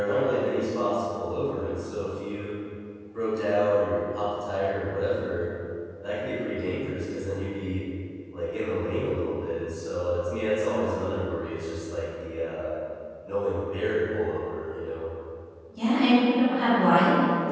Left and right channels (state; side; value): identical; both; correlation 1.00